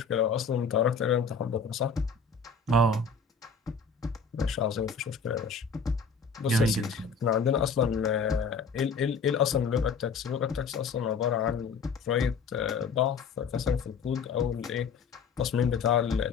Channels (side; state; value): right; quieter; 5.1 dB